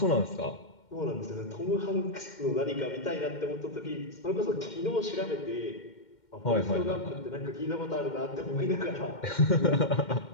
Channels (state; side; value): late; right; 2.1 ms